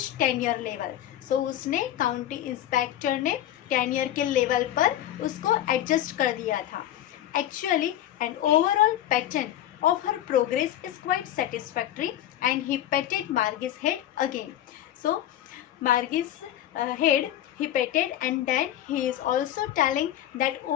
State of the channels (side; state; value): right; quieter; 12.3 dB